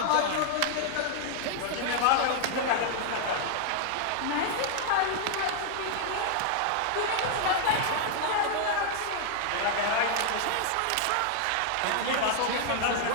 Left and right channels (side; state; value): both; different; correlation -0.01